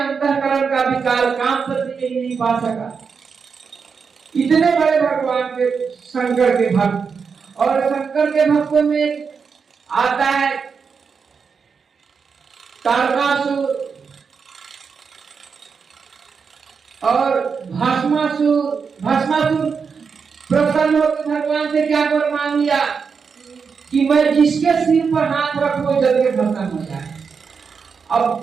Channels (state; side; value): quieter; left; 5.7 dB